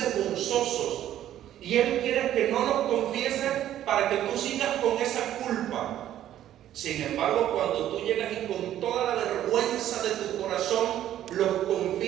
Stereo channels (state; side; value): quieter; left; 11.9 dB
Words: Y Él quiere que no los confieses para que tú sigas con esa culpa. Sin embargo, cuando tú llegas y con toda la vergüenza de tu corazón los